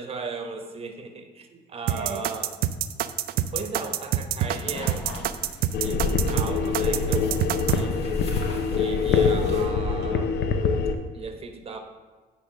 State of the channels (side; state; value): both; normal; correlation 0.32